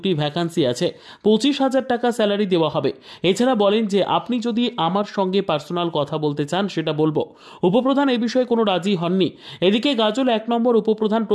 ভ্যাকান্সি আছে, 25,000 টাকা স্যালারি দেওয়া হবে। এছাড়া বলেন যে আপনি যদি আমার সঙ্গে পার্সোনাল কথা বলতে চান সেটা বলবো। উপপ্রধান এই বিষয়ে কোনো রাজি হননি। এদিকে গাজল 1 নম্বর উপপ্রধান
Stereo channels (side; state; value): both; identical; correlation 1.00